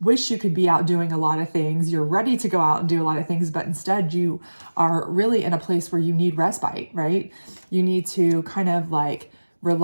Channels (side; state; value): both; inverted; correlation -1.00